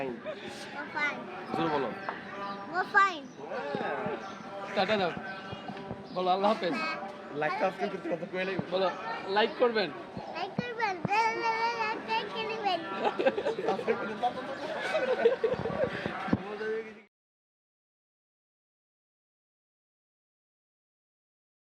টাটা দাও বলো আল্লাহ হাফেজ বলো লাইক করবেন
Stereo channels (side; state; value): both; identical; correlation 1.00